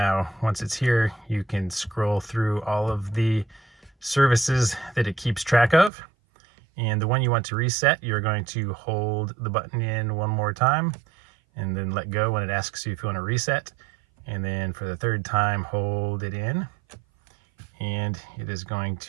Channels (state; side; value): drops out; left; at 5.9 s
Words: once it's here, you can scroll through all of the services that it keeps track of. And the one you want to reset, you're going to hold the button in one more time and then let go when it asks you if you want to reset. And then for the third time, hold it in, and it is going